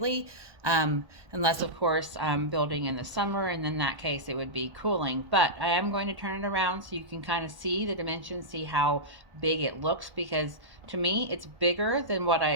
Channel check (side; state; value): left; late; 1.1 ms